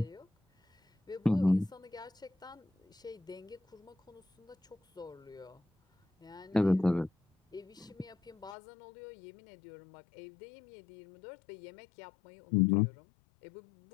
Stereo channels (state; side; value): drops out; right; at 8.6 s